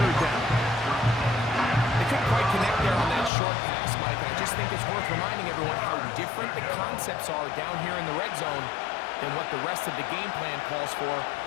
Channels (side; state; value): right; drops out; at 3.3 s